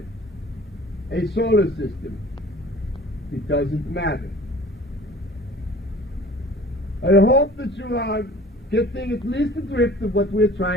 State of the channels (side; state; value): both; normal; correlation 0.47